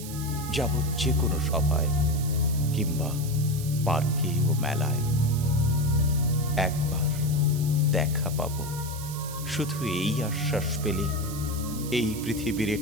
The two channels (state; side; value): noise; right; hiss, 12 dB below the sound